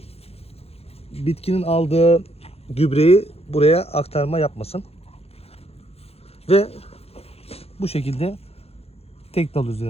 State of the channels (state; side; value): late; right; 0.29 ms